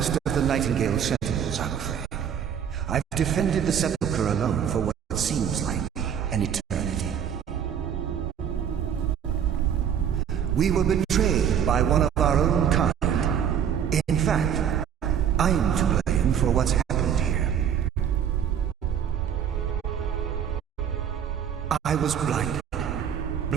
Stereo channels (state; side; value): quieter; left; 8.6 dB